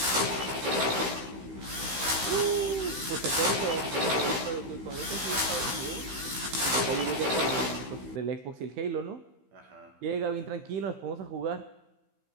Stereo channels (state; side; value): late; left; 16 ms